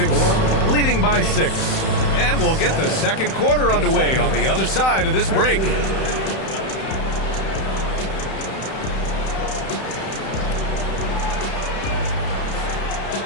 leading by 6. And we'll get the second quarter underway on the other side of this break.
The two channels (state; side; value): late; right; 31 ms